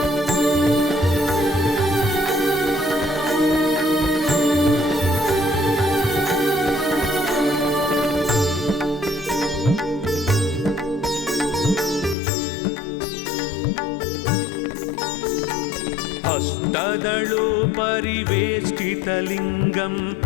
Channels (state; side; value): drops out; right; at 12.2 s